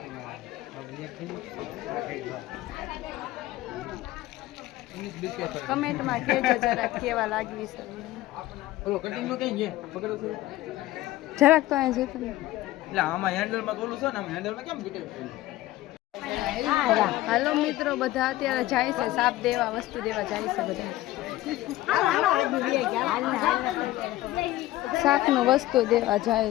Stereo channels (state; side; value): quieter; right; 16.2 dB